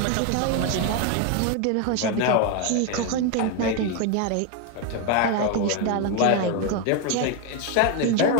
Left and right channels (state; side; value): different; both; correlation 0.02